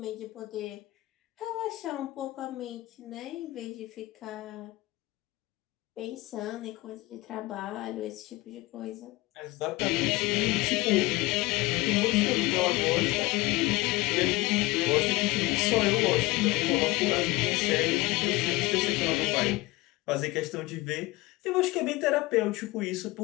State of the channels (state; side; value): quieter; right; 20.4 dB